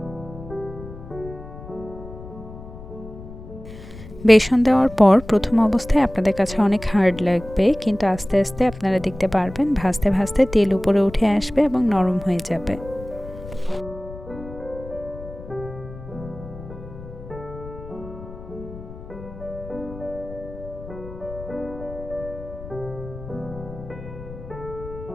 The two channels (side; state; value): left; noise; rumble, 14 dB below the sound